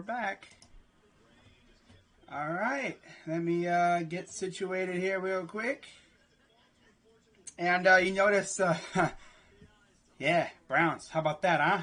back. All right. Let me get situated here real quick. And you notice, yeah, Browns. How about that,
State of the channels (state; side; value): identical; both; correlation 1.00